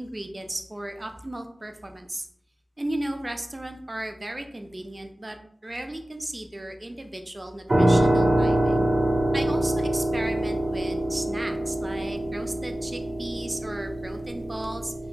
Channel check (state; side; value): normal; both; correlation 0.96